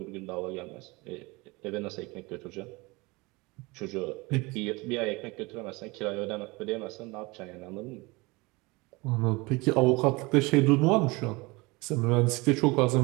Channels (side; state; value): left; quieter; 24.6 dB